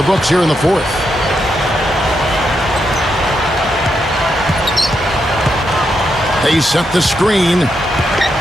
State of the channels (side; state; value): both; normal; correlation 0.82